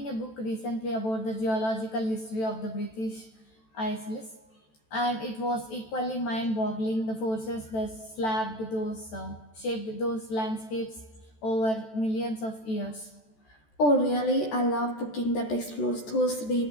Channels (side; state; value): right; late; 14 ms